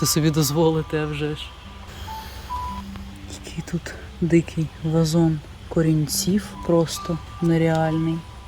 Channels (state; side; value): identical; both; correlation 1.00